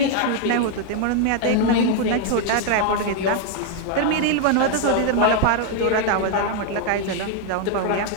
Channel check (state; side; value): different; both; correlation 0.00